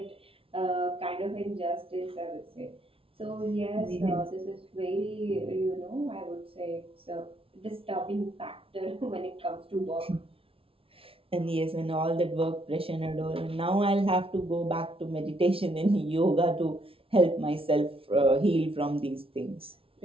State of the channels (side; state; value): left; late; 0.26 ms